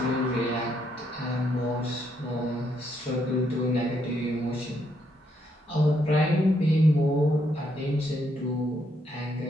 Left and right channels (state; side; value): normal; both; correlation 0.75